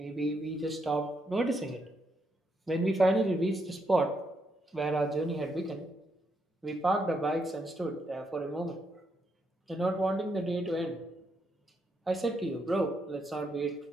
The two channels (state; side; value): normal; both; correlation 0.78